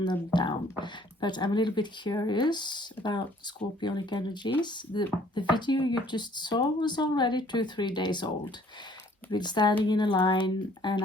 them down. But I'm a little bit curious about scorpionic energies. The video you just saw was already 2-3 days old. I've been standing in a line and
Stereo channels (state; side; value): normal; both; correlation 0.58